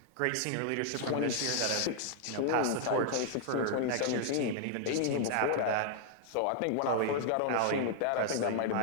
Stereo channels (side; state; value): both; different; correlation -0.01